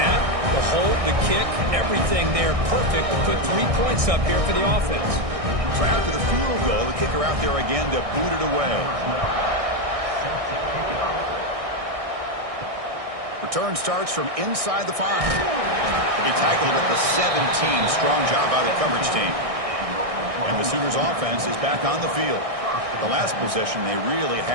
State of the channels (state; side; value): late; left; 1.6 ms